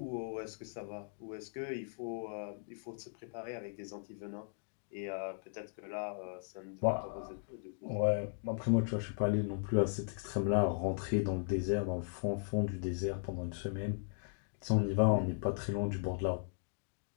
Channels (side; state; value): right; silent; digital silence